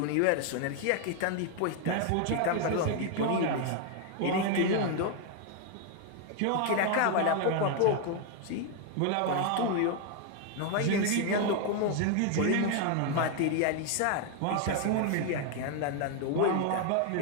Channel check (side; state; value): both; different; correlation 0.00